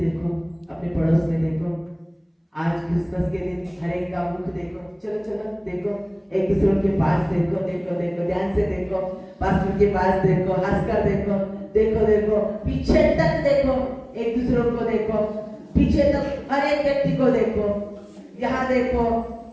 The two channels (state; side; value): identical; both; correlation 1.00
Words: अपने पड़ोस में देखो। आज क्रिसमस के दिन हर एक का मुख देखो, चलो चलो देखो, एक दूसरे के पास देखो, देखो देखो, ध्यान से देखो, पास्टर के पास देखो, हंसकर देखो, देखो देखो, पीछे तक देखो, एक दूसरे को देखो, पीछे तक हर एक व्यक्ति को देखो, यहाँ देखो,